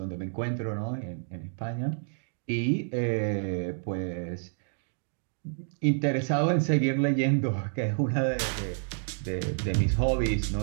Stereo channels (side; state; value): left; silent; digital silence